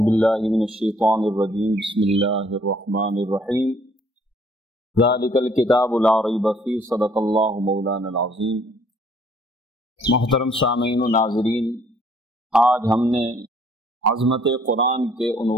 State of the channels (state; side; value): normal; both; correlation 0.62